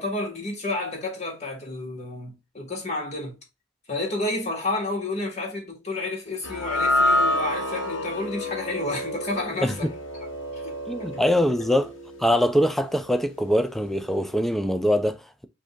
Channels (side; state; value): both; normal; correlation 0.63